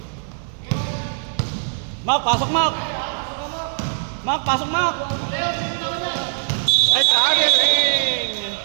Mark, pasok Mark. Mark, pasok Mark. Ay, target ring!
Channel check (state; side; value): silent; left; 56 dB below the other